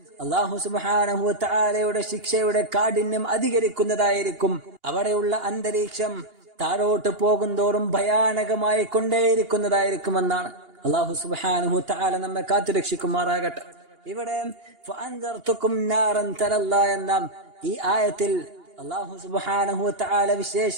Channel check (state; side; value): late; left; 2.8 ms